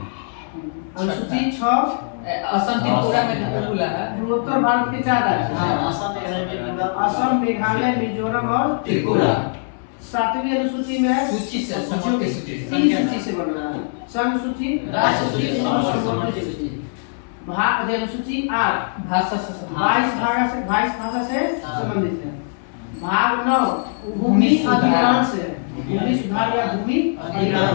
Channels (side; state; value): right; silent; 65 dB below the other